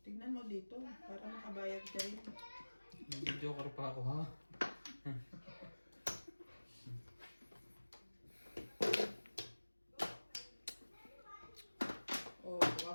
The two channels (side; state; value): both; inverted; correlation -1.00